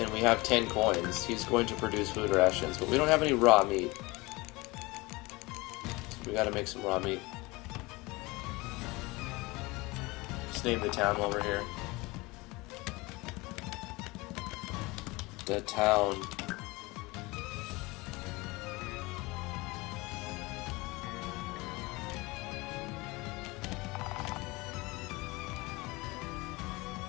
we have 10 coins, he's going to produce food rations, but we don't have any raw meat. So we gotta make some raw meat. Just name the town while we're here. The town.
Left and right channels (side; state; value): right; quieter; 23.4 dB